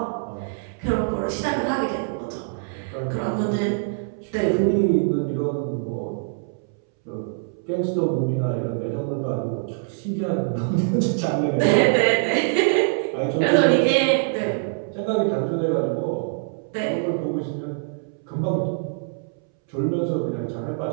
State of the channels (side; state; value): left; silent; 63 dB below the other